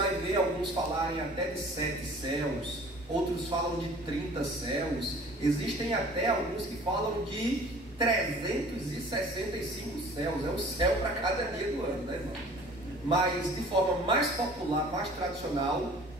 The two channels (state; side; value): normal; both; correlation 0.48